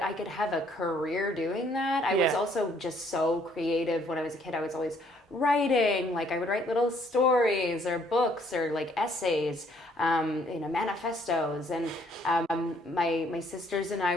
I could have a career doing that. I was also just so creative when I was a kid. I was always writing, like I would write little stories or books or like essays, you know, manifestos. And my sisters and I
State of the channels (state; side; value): normal; both; correlation 0.65